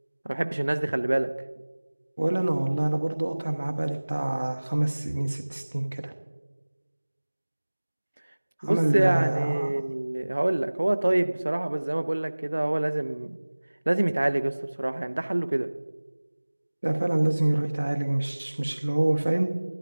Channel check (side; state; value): both; inverted; correlation -1.00